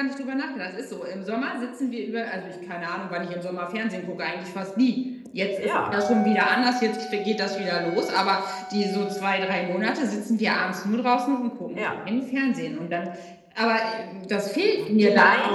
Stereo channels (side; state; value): both; identical; correlation 1.00